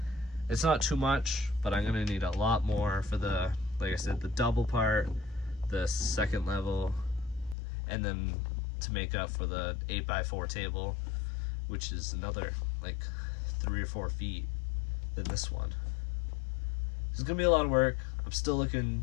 It's not too much, but I'm gonna need a lot more for the, like I said, the double part, the second level, and then to make up for the 8x4 table, which is another like 3 or 4 feet than this one. It's gonna be a lot of work. I'm still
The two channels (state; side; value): drops out; right; at 7.6 s